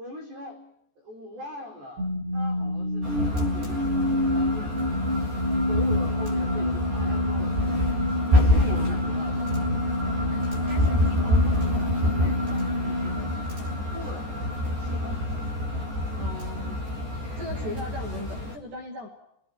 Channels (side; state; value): left; late; 14 ms